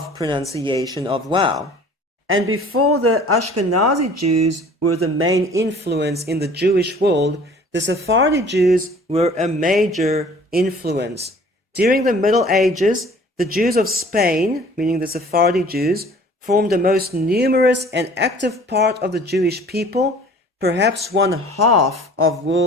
pronunciation of wow. And before the Ashkenazi Jews were the main influence in the Jewish world, the Sephardi Jews were a major influence. During the Middle Ages, the Jews of Spain, meaning the Sephardi Jews, formed the most numerous and active part of the Jewish people, perhaps 1/2 of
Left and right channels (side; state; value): both; normal; correlation 0.50